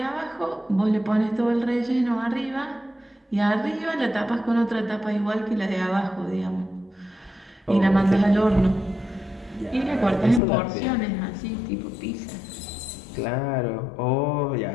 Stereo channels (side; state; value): right; drops out; at 10.4 s